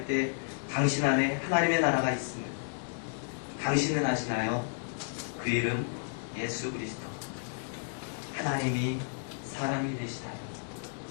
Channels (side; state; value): right; silent; digital silence